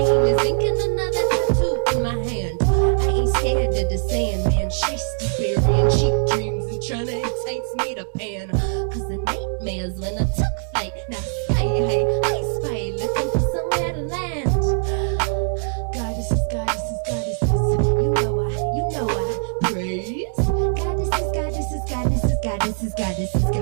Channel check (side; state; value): left; silent; digital silence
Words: is inking another tattoo in my hand. I ain't scared of the Sandman, chased burying cheap dreams and trying to entice me to pan. Cause the nightmares when I took flight, now sky high, I spy, looking for somewhere to land. Goddesses, goddesses, goddesses, you know I praise. Goddesses, goddesses, goddesses, goddesses, goddesses,